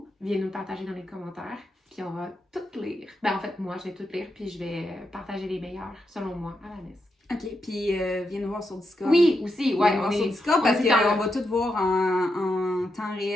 viens nous partager dans les commentaires, puis on va tout lire. Ben en fait, moi, je vais tout lire, puis je vais partager les meilleurs, selon moi, à Vanessa. OK, puis viens nous voir sur Discord. Oui, aussi, ouais. Viens nous voir sur Discord parce qu'on va tout voir en temps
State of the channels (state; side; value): normal; both; correlation 0.84